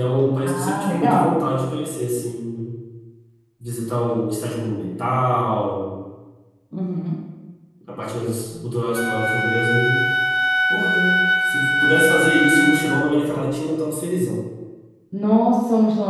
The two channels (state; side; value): identical; both; correlation 1.00